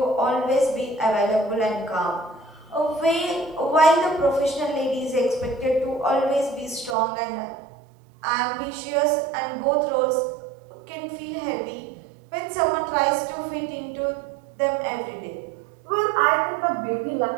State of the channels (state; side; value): drops out; left; at 7.0 s